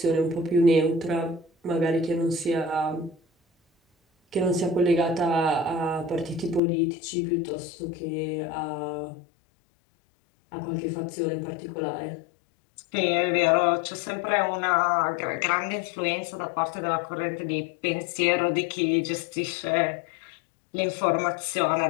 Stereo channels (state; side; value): drops out; right; at 6.6 s